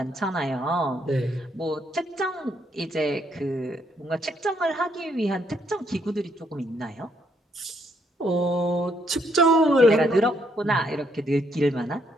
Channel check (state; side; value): normal; both; correlation 0.72